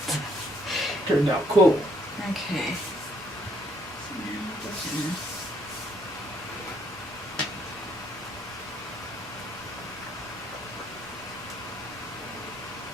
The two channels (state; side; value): normal; both; correlation 0.68